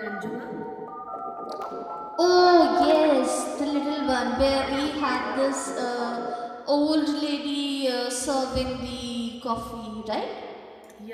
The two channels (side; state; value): both; identical; correlation 1.00